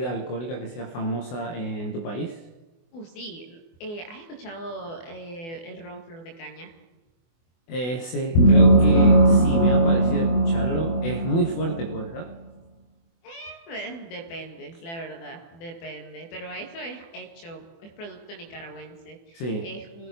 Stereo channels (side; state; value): right; late; 24 ms